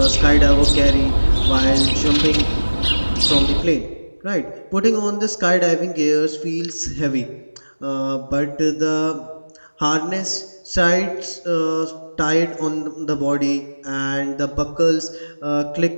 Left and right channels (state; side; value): inverted; both; correlation -1.00